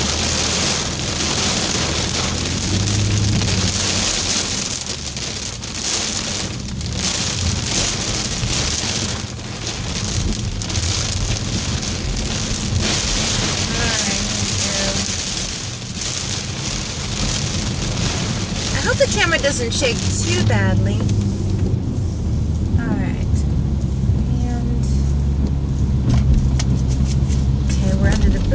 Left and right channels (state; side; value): identical; both; correlation 1.00